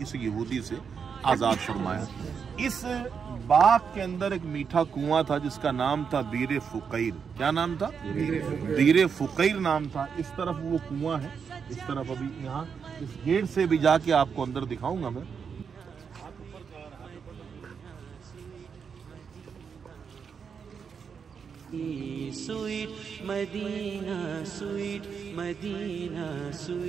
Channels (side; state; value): left; quieter; 6.4 dB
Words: इस यहूदी से आज़ाद फरमाया। इस बाग के अंदर एक मीठा कुआं था जिसका नाम था बीरे फुकैर। क्या नाम था? बीरे फुकैर नाम था। इस तरफ वो कुआं है, इस तरफ अभी यहाँ इस गेट से भी जाके आपको अंदर दिखाऊंगा मैं। Sweet Medina, sweet Medina,